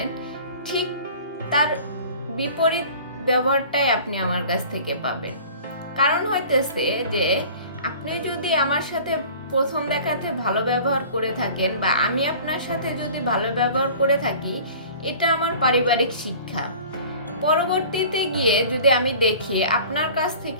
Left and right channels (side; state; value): both; inverted; correlation -0.44